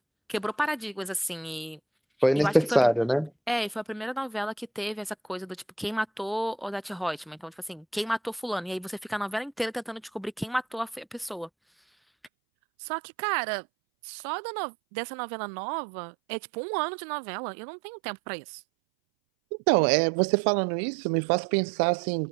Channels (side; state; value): left; drops out; at 12.3 s